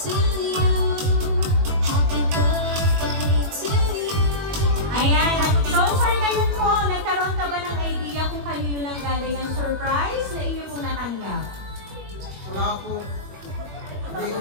Ayan. So, sir, ngayon po, nagkaroon ka ba ng idea kung kanino nang galing ang surprise na inyo pong natanggap? Wala po. Hindi ko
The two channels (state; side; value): late; left; 21 ms